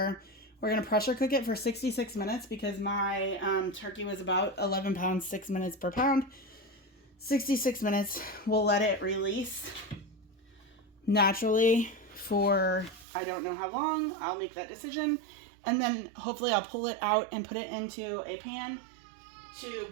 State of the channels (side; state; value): left; drops out; at 13.1 s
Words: We're going to pressure cook it for 66 minutes because my turkey was about 11 pounds, 6 minutes per pound. 66 minutes. We'll let it release naturally for I don't know how long. I'll make that decision. And then hopefully I'll pull it out and put it into a pan to